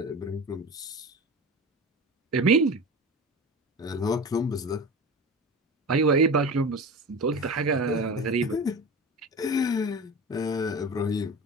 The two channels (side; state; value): both; normal; correlation 0.31